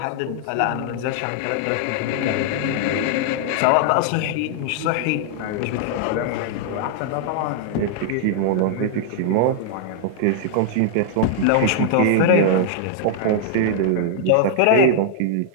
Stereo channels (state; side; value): different; both; correlation -0.01